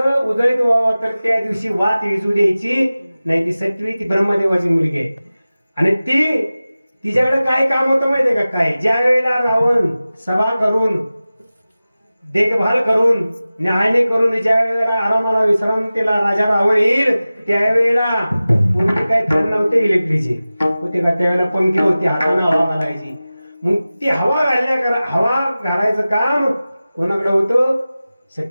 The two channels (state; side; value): inverted; both; correlation -0.96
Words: उजळीत व्हावं तर त्या दिवशी वात विजू द्यायची नाही. ती सटवी ती ब्रह्मदेवाची मुलगी आहे. आणि तिच्याकडे काय काम होतं माहितीये का? काय ज्या वेळेला रावण सभा करून देखभाल करून न्याहाळणी करून ज्या वेळेला आरामाला विश्रांतीला राजा रावण येईल त्यावेळेला पूर्वी काय फॅन नव्हते इलेक्ट्रिकचे होते का? त्यावेळेला पंखी होती, हाताने हवा घालायची. मग ती हवा घालायचं काम कोणाकडे होतं?